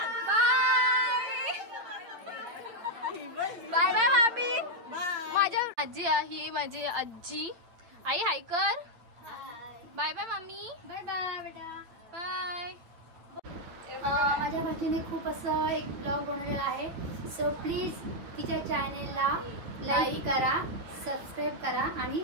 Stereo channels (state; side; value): late; left; 8.9 ms